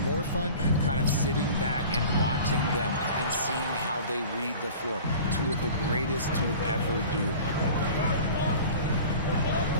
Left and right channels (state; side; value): inverted; both; correlation -0.41